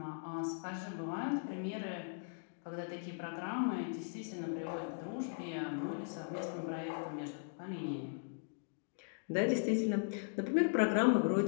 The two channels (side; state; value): right; silent; digital silence